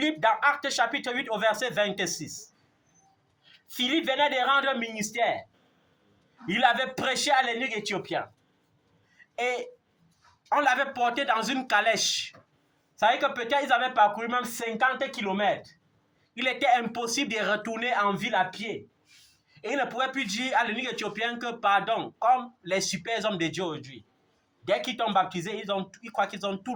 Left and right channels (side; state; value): both; identical; correlation 1.00